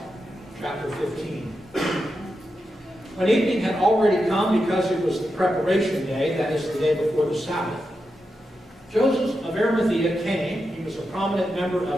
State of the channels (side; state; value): both; normal; correlation 0.87